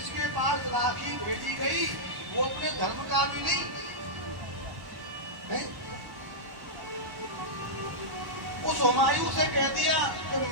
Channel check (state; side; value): late; left; 1.1 ms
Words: पास राखी भेजी गई वो अपने धर्म का भी नहीं है? उस हुमायूं से कह दिया कि